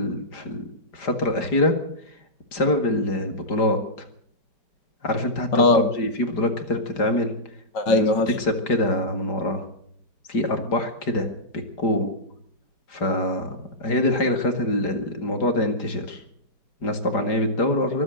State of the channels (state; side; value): late; right; 5.0 ms